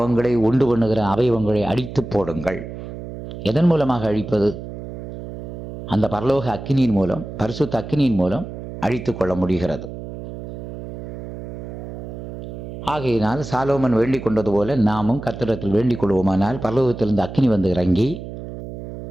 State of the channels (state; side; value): noise; right; hum, 10 dB below the sound